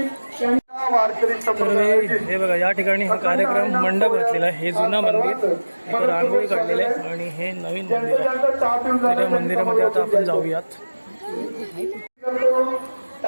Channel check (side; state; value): both; inverted; correlation -1.00